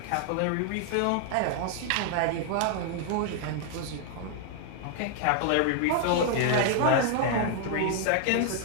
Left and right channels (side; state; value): both; different; correlation 0.00